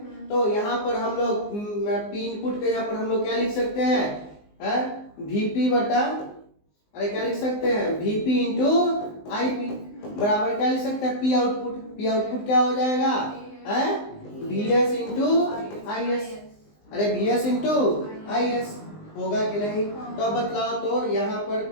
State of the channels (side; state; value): right; late; 19 ms